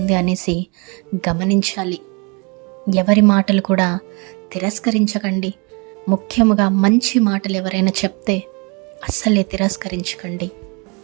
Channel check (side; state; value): left; quieter; 31.1 dB